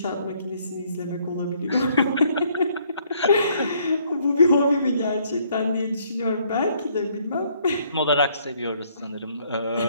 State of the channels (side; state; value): both; inverted; correlation -0.66